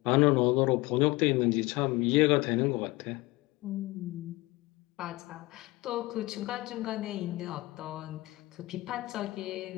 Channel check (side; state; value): right; quieter; 21.4 dB